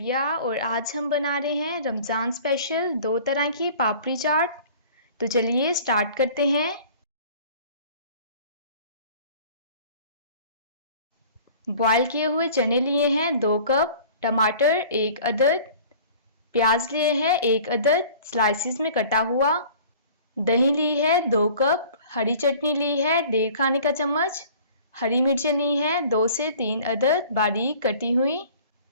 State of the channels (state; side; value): inverted; both; correlation -0.47